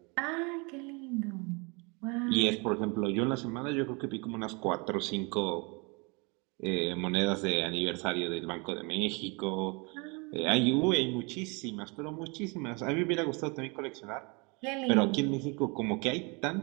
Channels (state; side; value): quieter; left; 30.2 dB